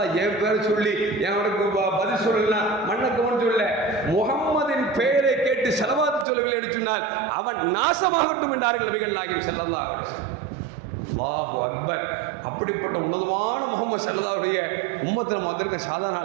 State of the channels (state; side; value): drops out; left; at 6.2 s